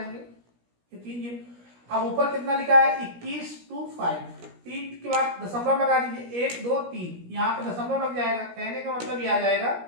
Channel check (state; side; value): late; left; 17 ms